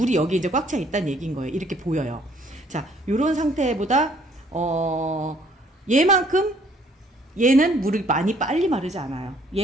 여기 이제 꽉 차 있다는 얘기인 거예요. 이렇게 보여요. 자, 요런 상태보다 얘는 물이 많이 빨리 마르지 않아요.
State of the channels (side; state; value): both; normal; correlation 0.62